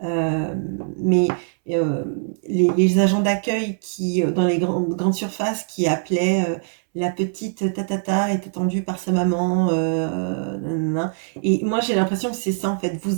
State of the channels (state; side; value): silent; left; 64 dB below the other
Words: euh, mais euh, les agents d'accueil qui, dans les grandes surfaces, qui appelaient la petite tatata est attendue par sa maman, nanana. Et moi j'ai l'impression que c'est ça en fait.